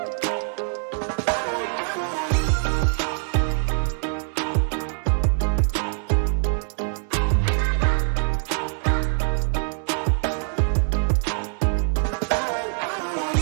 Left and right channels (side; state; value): left; silent; 59 dB below the other